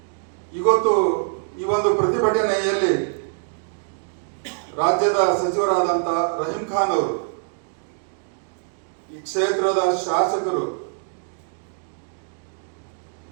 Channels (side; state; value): left; silent; digital silence